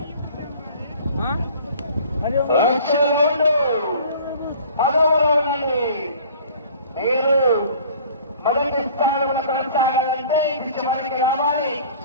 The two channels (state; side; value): inverted; both; correlation -0.48